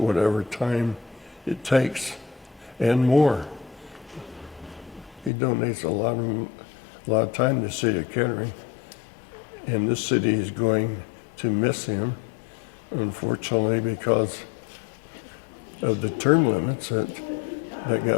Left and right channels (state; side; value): drops out; right; at 5.3 s